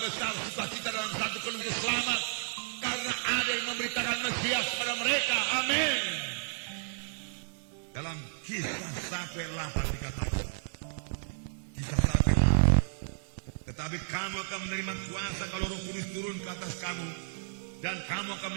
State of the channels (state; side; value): silent; left; 56 dB below the other